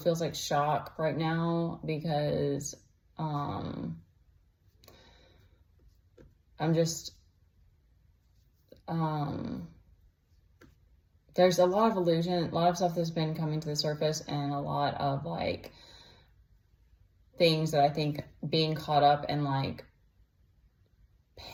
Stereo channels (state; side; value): identical; both; correlation 1.00